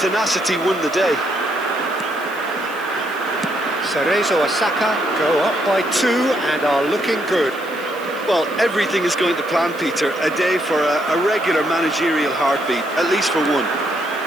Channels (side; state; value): right; noise; hiss, 21 dB below the sound